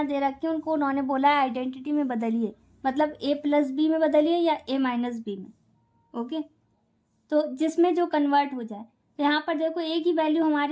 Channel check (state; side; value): identical; both; correlation 1.00